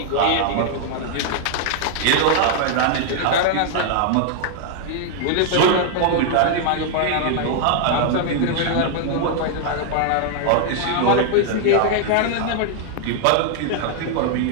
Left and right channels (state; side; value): different; both; correlation -0.01